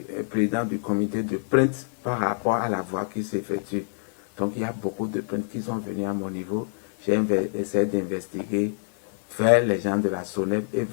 président du comité de plainte par rapport à la voie qui s'effectue. Donc il y a beaucoup de plaintes qui sont venues à mon niveau. J'ai essayé d'investiguer vers les gens de la SONEP et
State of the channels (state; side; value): silent; right; 61 dB below the other